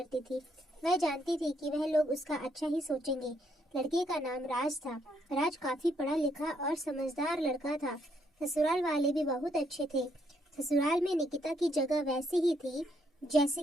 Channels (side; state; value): both; normal; correlation 0.73